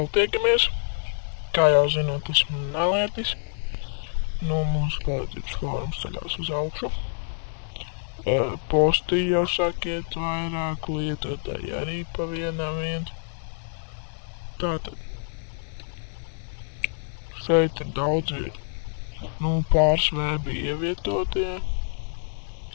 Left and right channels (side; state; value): right; silent; digital silence